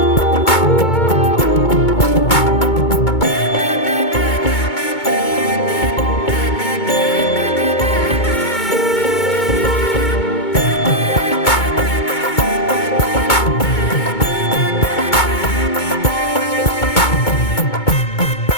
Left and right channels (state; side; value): late; right; 2.2 ms